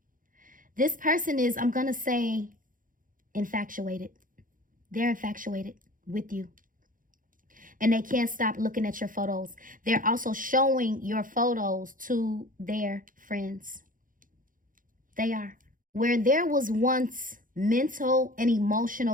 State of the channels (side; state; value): left; late; 0.39 ms